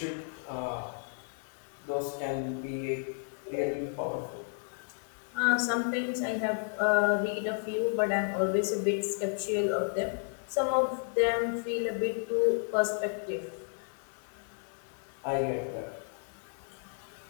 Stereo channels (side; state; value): right; silent; 56 dB below the other